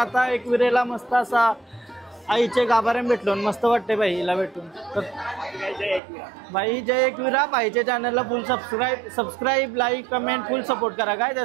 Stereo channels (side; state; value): left; drops out; at 6.0 s